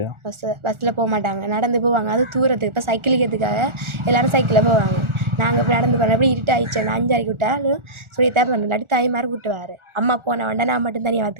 பஸ்ஸில் போக மாட்டாங்க, நடந்து போவாங்க. அது தூரத்துக்கு இப்போ சைக்கிளுக்கிறதுக்காக எல்லாரும் சைக்கிளில் போவாங்க. நாங்கள் இப்போ நடந்து போனோம். எப்படி இருட்டு ஆயிடுச்சு, நான் 5:30 விட்டாலும் சொல்லித்தான் பண்ணல. இல்லாட்டி தாய் மாதிரி விட்டுவார். அம்மா போன வேண்டாம், நான் மட்டும் தனியாக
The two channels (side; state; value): left; late; 1.4 ms